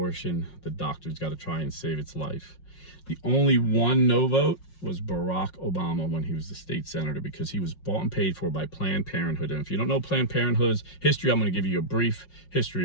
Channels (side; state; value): right; late; 5.5 ms